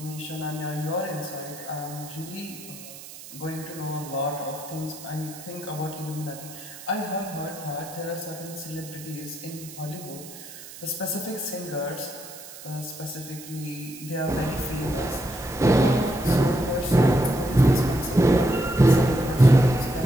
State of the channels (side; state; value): right; noise; hiss, 15 dB below the sound